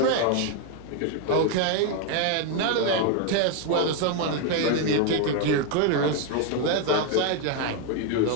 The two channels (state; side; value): different; both; correlation 0.01